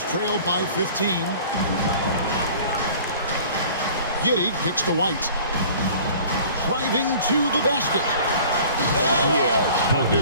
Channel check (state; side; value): inverted; both; correlation -0.47